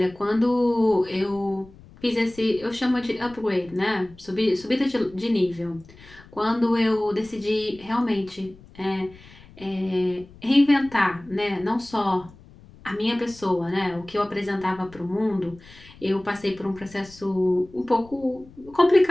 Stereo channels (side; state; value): left; noise; rumble, 22 dB below the sound